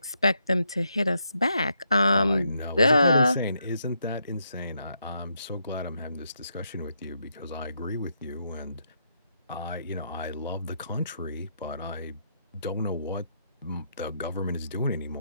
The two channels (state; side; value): inverted; both; correlation -0.79